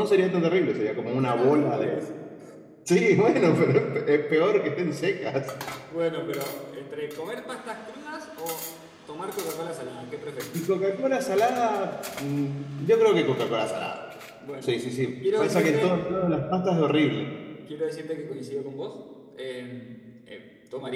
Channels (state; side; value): identical; both; correlation 1.00